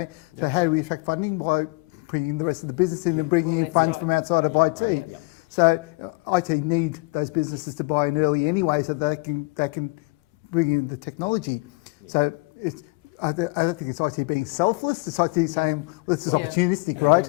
so how do we attract funding? By bringing the rest of the business in and bringing in funds from outside of IT. So IT need those businesses to buy in early anyway, so they can bring in the technology. Yeah. So I don't think it's IT being selfless. It's IT saying, well, this is Well, opportunistic,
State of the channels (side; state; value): right; quieter; 27.9 dB